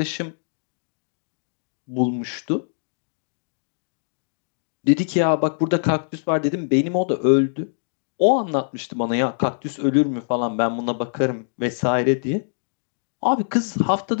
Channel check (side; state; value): right; silent; digital silence